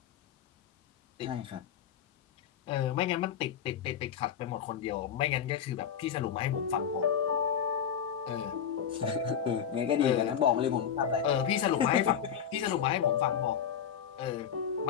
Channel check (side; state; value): right; quieter; 8.4 dB